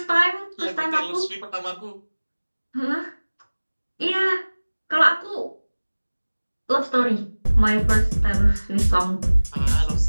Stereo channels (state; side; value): inverted; both; correlation -1.00